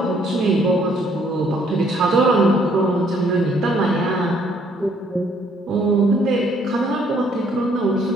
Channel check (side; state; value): both; normal; correlation 0.65